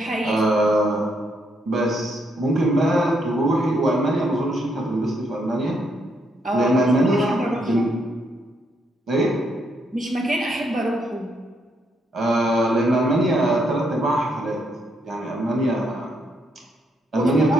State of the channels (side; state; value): both; normal; correlation 0.75